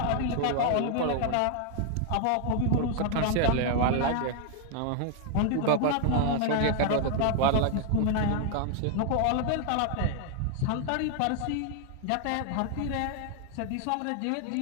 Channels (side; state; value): both; different; correlation 0.00